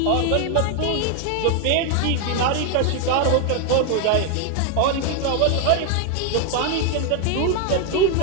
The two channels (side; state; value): both; different; correlation 0.00